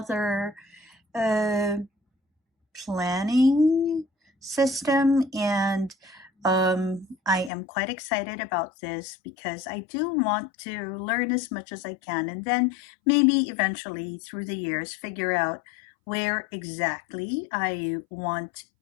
uh, planning system. And I am quite excited about this because I do want to learn as much as I can, and then maybe eventually through the years figure out where exactly I want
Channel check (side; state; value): right; drops out; at 7.5 s